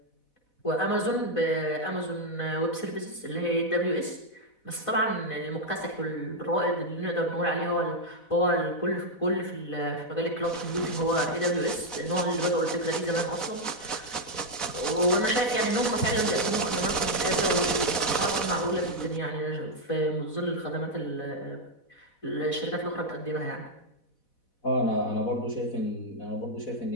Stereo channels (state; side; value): late; right; 4.1 ms